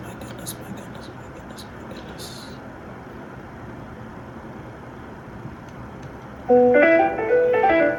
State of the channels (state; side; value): identical; both; correlation 1.00